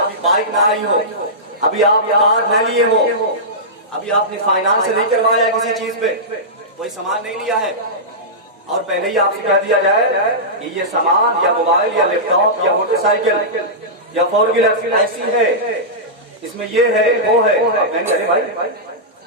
ابھی بائک نہ آئی ہو، ابھی آپ کار نہ لیے ہو، ابھی آپ نے فائنانس نہیں کروایا کسی چیز پہ، کوئی سامان نہیں لیا ہے، اور پہلے ہی آپ سے کہہ دیا جائے کہ یہ سامان یا موبائل یا لیپ ٹاپ یا موٹر سائیکل یا فور ویلر ایسی ہے، اس میں یہ ہے وہ ہے. ارے بھائی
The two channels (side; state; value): both; normal; correlation -0.15